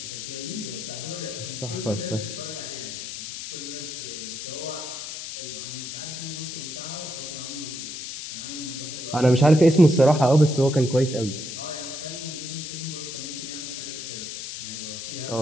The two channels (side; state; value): left; noise; hiss, 7 dB below the sound